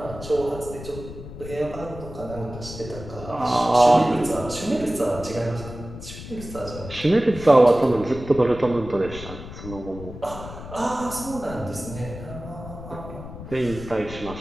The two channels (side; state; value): left; noise; rumble, 12 dB below the sound